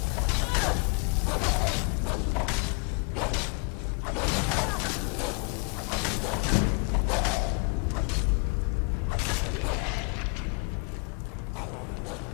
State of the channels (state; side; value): quieter; right; 34.9 dB